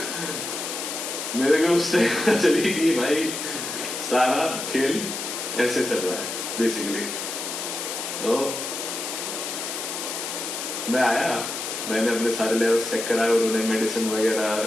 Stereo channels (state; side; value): noise; left; hiss, 5 dB below the sound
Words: मेरे को उस टाइम पता चली कि भाई सारा खेल ऐसे चल रहा है बेसिकली। तो मैं आया, मैंने अपने सारे लेवल्स चेक कराए, उन्होंने मेडिसिन